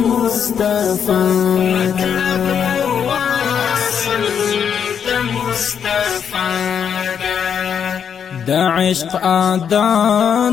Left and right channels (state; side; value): quieter; right; 7.7 dB